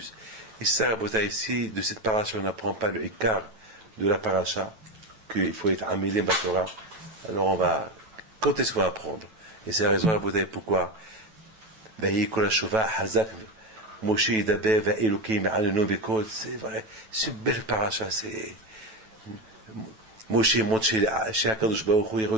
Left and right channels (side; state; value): left; late; 9.1 ms